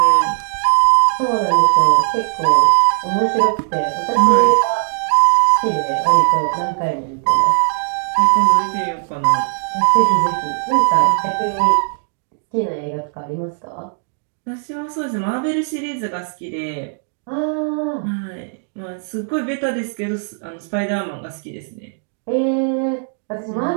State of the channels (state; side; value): silent; left; digital silence